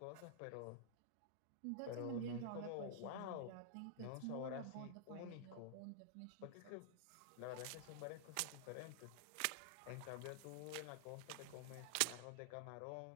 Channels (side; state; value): both; different; correlation -0.01